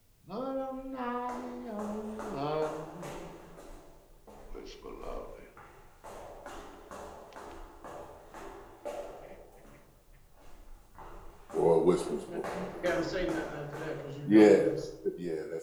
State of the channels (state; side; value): identical; both; correlation 1.00